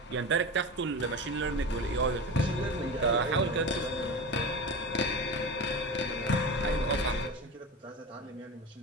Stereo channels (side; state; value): both; normal; correlation 0.28